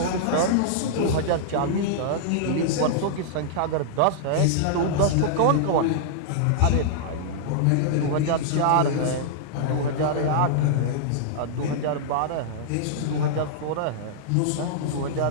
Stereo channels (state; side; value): different; both; correlation -0.02